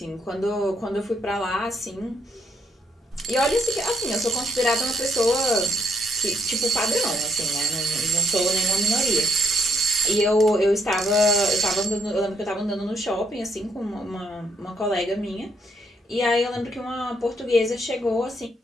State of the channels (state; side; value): normal; both; correlation 0.74